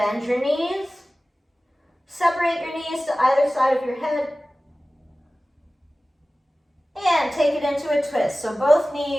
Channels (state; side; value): normal; both; correlation 0.97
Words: your knees. Separate your knees to either side of your head. And take it into a twist. So both